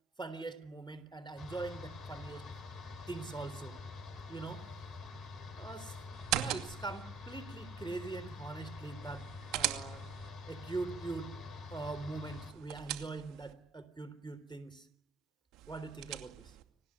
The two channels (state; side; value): quieter; left; 4.3 dB